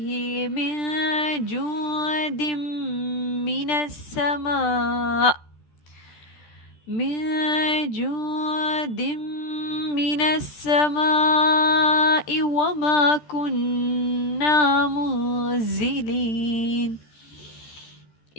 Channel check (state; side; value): late; right; 13 ms